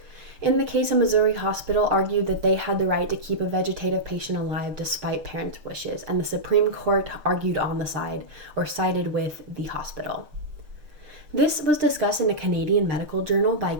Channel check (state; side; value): late; left; 6.6 ms